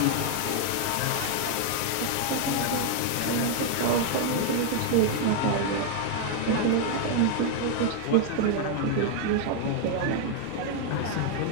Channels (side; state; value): both; different; correlation 0.00